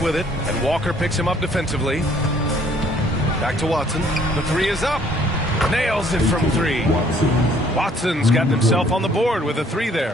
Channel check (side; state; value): both; normal; correlation 0.61